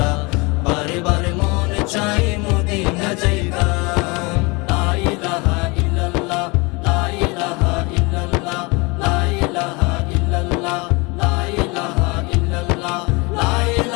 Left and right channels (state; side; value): quieter; right; 27.1 dB